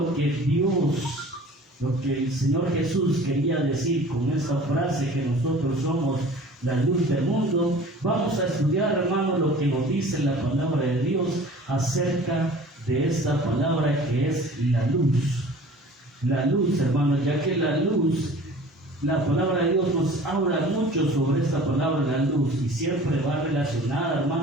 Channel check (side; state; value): both; normal; correlation 0.45